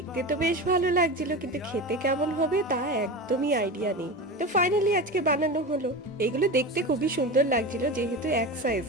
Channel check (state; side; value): normal; both; correlation 0.26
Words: তো বেশ ভালো লাগছিল, কিন্তু খেতে কেমন হবে তা একদমই আইডিয়া নেই। তো ফাইনালি আজকে বানানো হলো। এগুলো দেখতে খুবই সুন্দর লাগছিল, যেহেতু এক